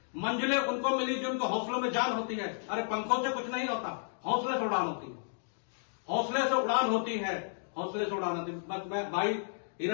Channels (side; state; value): right; silent; digital silence